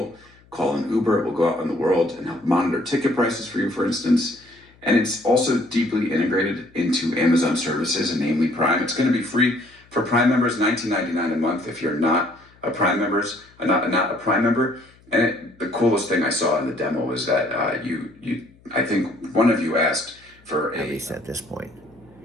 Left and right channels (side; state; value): left; noise; hum, 29 dB below the sound